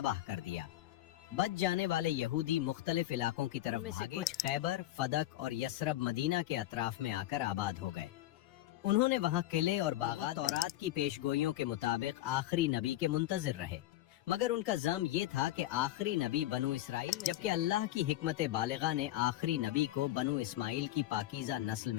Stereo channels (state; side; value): quieter; right; 14.7 dB